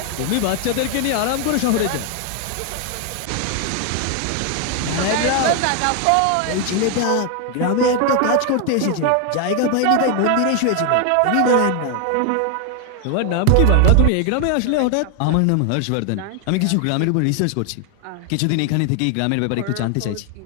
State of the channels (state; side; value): different; both; correlation 0.01